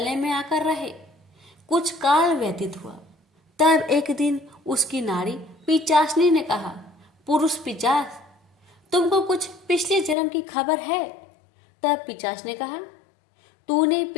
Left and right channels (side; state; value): right; drops out; at 10.2 s